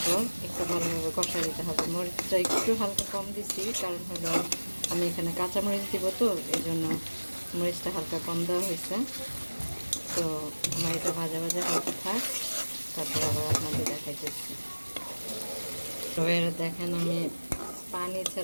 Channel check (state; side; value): inverted; both; correlation -1.00